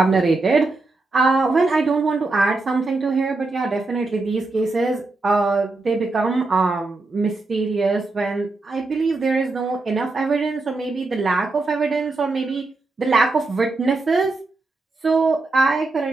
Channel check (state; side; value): quieter; left; 3.4 dB